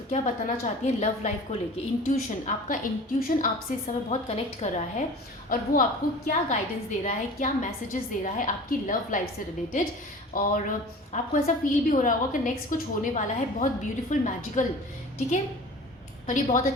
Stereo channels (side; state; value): both; normal; correlation 0.41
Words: क्या बताना चाहती है लव लाइफ को लेके। इंट्यूशन, आपका इंट्यूशन आपसे इस समय बहुत कनेक्ट कर रहा है और वो आपको क्या गाइडेंस दे रहा है, क्या मैसेजेस दे रहा है आपकी लव लाइफ से रिलेटेड। और आपको ऐसा फील भी हो रहा होगा कि नेक्स्ट कुछ होने वाला है बहुत ब्यूटीफुल मैजिकल, ठीक है। और ये बहुत